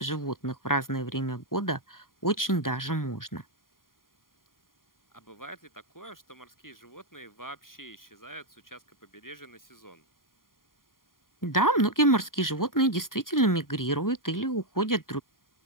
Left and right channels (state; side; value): late; right; 0.91 ms